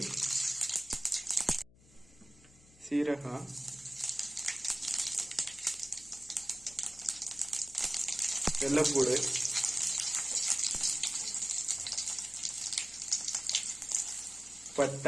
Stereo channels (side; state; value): left; noise; hum, 26 dB below the sound